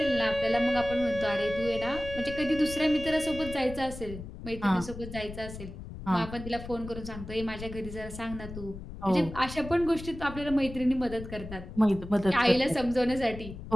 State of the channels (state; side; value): noise; left; rumble, 11 dB below the sound